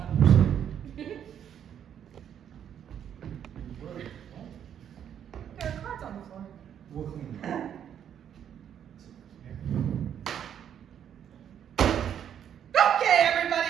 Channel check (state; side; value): quieter; left; 9.2 dB